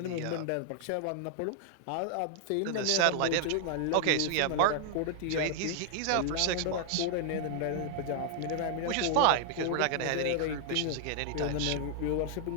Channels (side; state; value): both; different; correlation 0.00